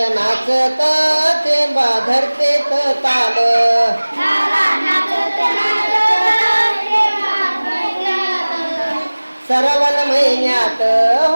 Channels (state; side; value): inverted; both; correlation -1.00